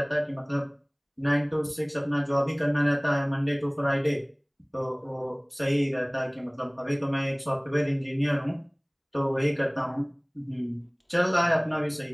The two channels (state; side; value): identical; both; correlation 1.00